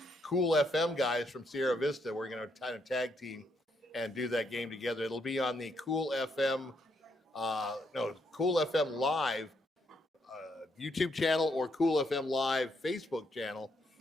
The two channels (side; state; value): both; normal; correlation 0.75